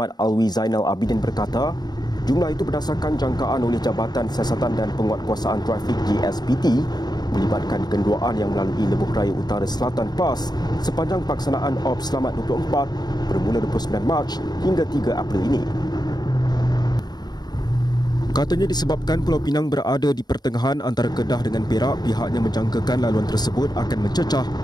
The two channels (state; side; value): late; right; 0.20 ms